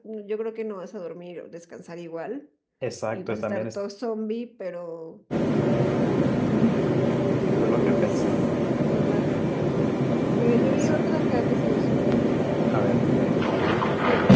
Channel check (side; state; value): both; identical; correlation 1.00